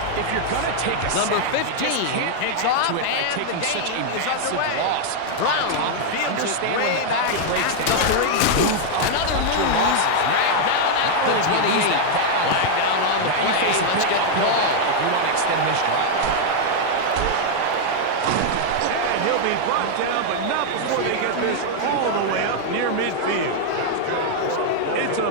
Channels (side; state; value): both; different; correlation -0.01